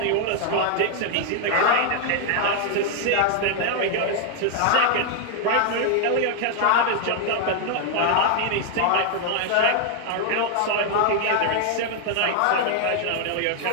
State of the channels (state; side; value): different; both; correlation 0.00